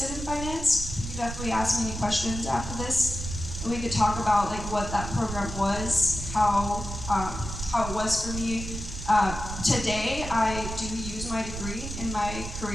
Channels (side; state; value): right; noise; rumble, 7 dB below the sound